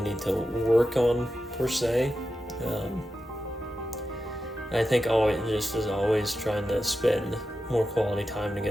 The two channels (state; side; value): normal; both; correlation 0.91